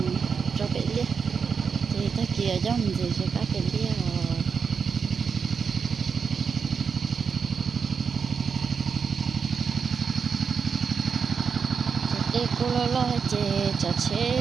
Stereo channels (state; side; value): quieter; left; 6.0 dB